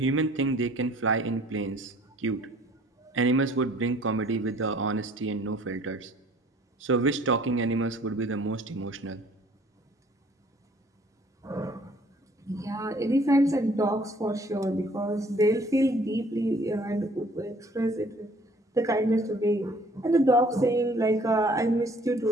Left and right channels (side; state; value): both; normal; correlation 0.56